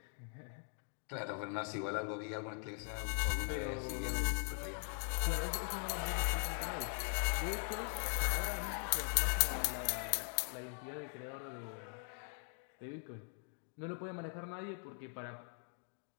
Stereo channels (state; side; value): silent; right; 50 dB below the other